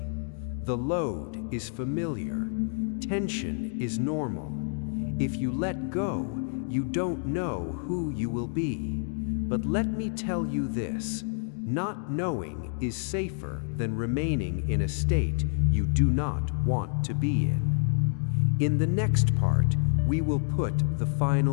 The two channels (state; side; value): silent; right; 59 dB below the other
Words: The load is familiar. Tension is normal. If you let go, you don't know who you will be. But let me tell you this: not knowing is safer than remaining in a state you do not want to be in. In the next part, we will put the